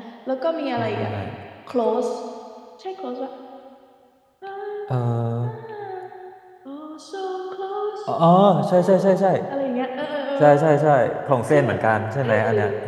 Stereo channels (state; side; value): identical; both; correlation 1.00